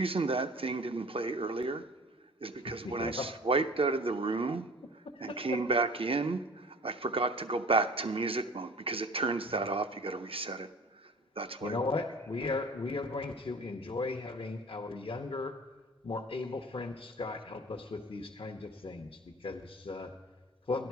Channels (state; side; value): normal; both; correlation 0.44